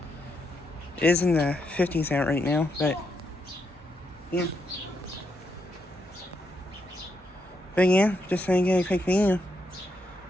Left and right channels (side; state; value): both; normal; correlation 0.81